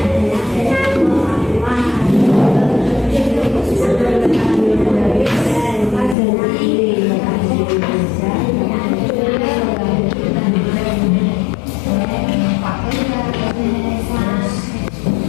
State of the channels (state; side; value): drops out; right; at 6.2 s